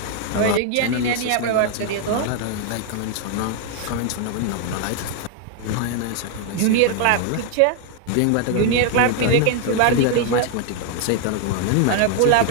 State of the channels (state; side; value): different; both; correlation 0.00